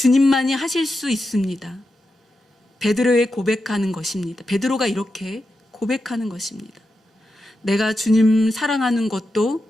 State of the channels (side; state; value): both; normal; correlation 0.88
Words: 하실 수 있습니다. 베드로의 고백하는 것입니다. 베드로가 이렇게 고백하는 것입니다. 내가 주님 사랑하는